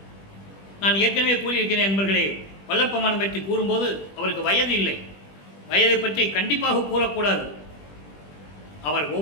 நான் ஏற்கனவே கூறியிருக்கிறேன் நண்பர்களே. வல்லப்பமானம் பற்றி கூறும்போது அவருக்கு வயது இல்லை. வயதை பற்றி கண்டிப்பாக கூறக்கூடாது. அவர்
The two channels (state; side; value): late; right; 20 ms